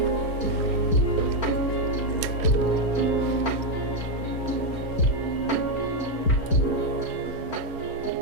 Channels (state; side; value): late; right; 4.4 ms